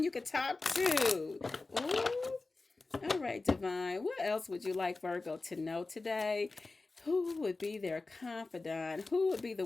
you could talk to. Ooh. All right, Divine. What else would you like Virgo to know today? Who would be their confidant? Who would be the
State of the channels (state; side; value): quieter; right; 3.5 dB